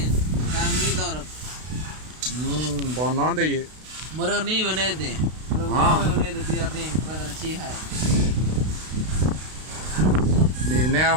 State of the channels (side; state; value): left; late; 32 ms